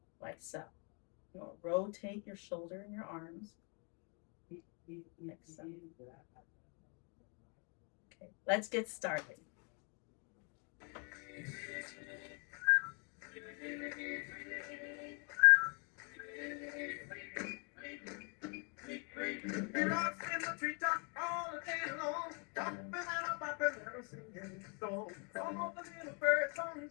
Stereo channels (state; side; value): quieter; right; 37.3 dB